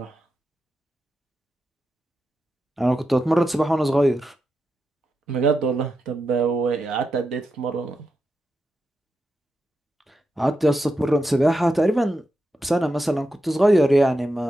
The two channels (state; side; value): normal; both; correlation 0.88